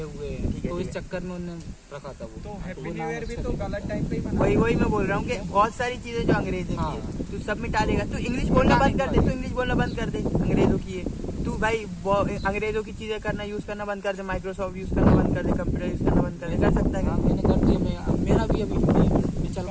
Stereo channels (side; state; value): both; identical; correlation 1.00